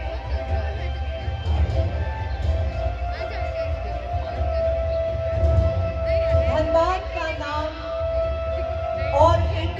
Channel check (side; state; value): both; identical; correlation 1.00